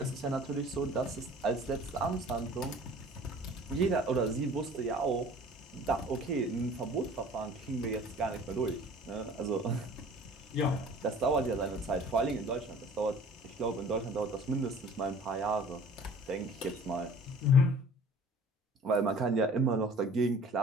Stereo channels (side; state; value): both; normal; correlation 0.47